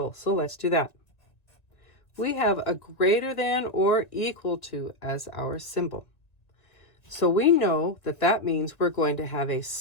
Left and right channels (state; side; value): late; right; 1.7 ms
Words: So let's do that. We have a greater than or equal to as our symbol. So we know that that means we're going to have a